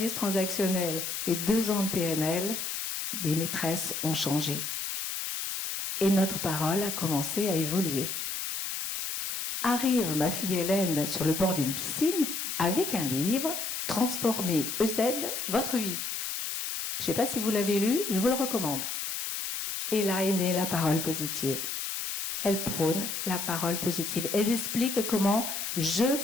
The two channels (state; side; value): noise; left; hiss, 4 dB below the sound